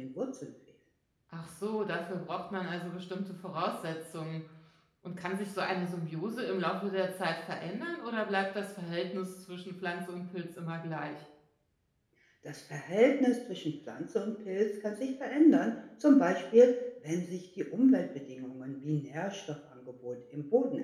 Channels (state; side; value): identical; both; correlation 1.00